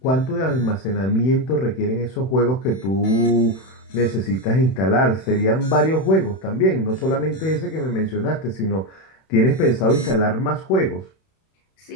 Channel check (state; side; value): late; right; 31 ms